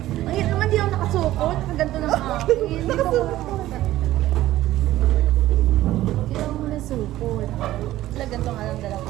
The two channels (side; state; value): left; quieter; 14.9 dB